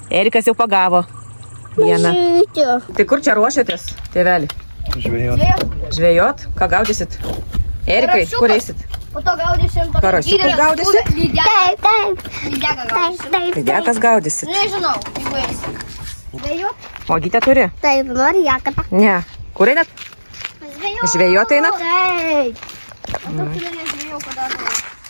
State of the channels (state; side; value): inverted; both; correlation -1.00